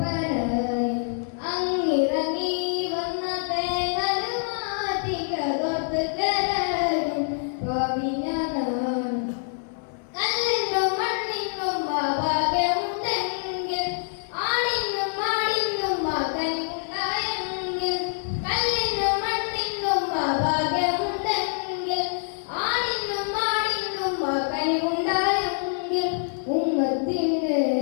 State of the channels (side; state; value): right; silent; digital silence